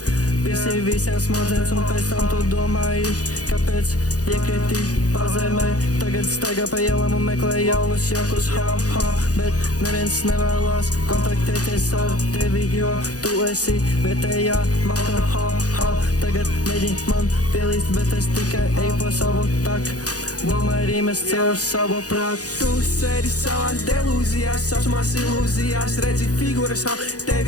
Visi visiem smadzenes un pēc tam tu domāji, kāpēc iekriti pazemē. Tagad staigā pa ielām un meklē jaunus jokus, bet neviens nevēlās kontaktēties ar tevi, jo tu esi vietējā malka, Tagad mēģini man pielīst, bet es tikai eju pa savu taku. Domāju rīmes caur savu prātu. Tu sēdi savās delūzijās, saucamās ilūzijās. Redzi figūras, tev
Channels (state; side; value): late; right; 0.67 ms